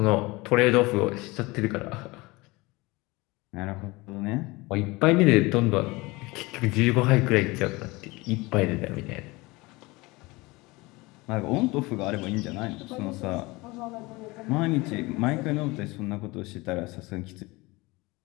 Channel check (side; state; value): right; quieter; 22.9 dB